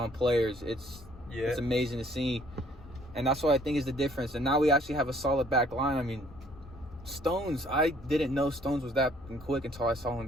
players, it's amazing to see. And that's what I think is the difference. And now we actually have a solid back line. I mean, Stones, I didn't know Stones was that quick until I saw him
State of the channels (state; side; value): normal; both; correlation 0.61